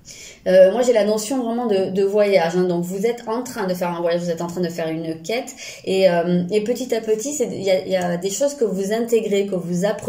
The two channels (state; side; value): identical; both; correlation 1.00